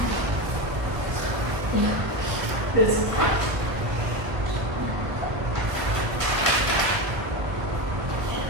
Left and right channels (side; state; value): left; late; 1.2 ms